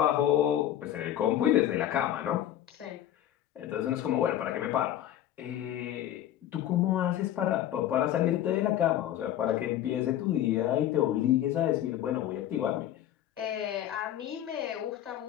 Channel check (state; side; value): quieter; right; 11.9 dB